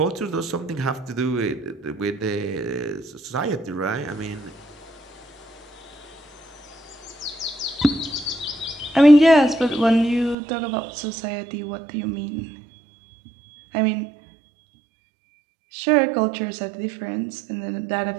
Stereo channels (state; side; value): drops out; left; at 10.4 s